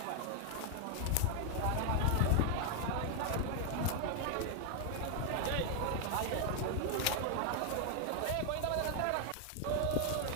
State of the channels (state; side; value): different; both; correlation 0.00